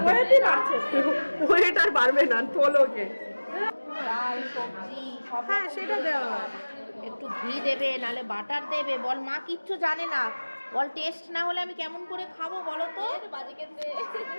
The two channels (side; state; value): both; inverted; correlation -1.00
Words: ওয়েট আর বাড়বে না, তোলোকে। ডাল সবজি সব হ্যাঁ, সেটা দেওয়া হয়। একটু ঘি দেবে, নাহলে বাটার দেবে। বল মা কিচ্ছু জানে না, বল টেস্ট না হলে আমি কেমন করে খাবো বলো তো,